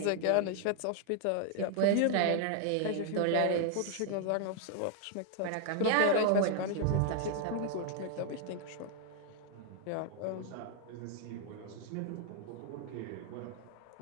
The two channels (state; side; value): different; both; correlation 0.00